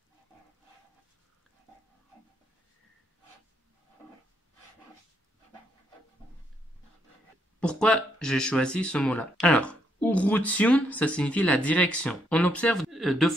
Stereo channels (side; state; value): both; normal; correlation 0.75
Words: Pourquoi j'ai choisi ce mot-là? Alors, urutiun, ça signifie la direction. On observe deux